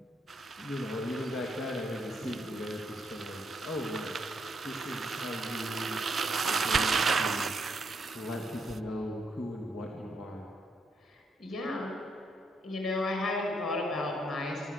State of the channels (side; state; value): both; normal; correlation 0.76